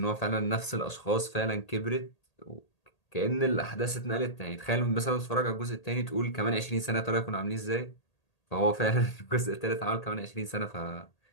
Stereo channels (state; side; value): late; right; 1.8 ms